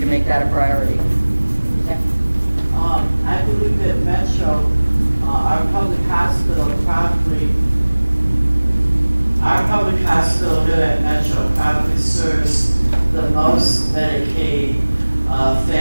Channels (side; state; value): both; inverted; correlation -1.00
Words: make that a priority. Okay. I believe that Metro, our public hospital here at Metro probably serves the most Medicaid